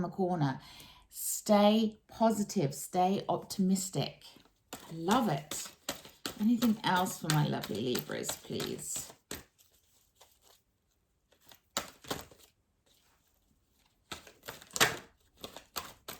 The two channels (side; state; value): both; identical; correlation 1.00